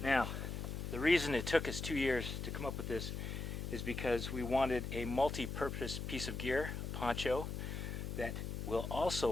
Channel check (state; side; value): noise; left; hum, 4 dB below the sound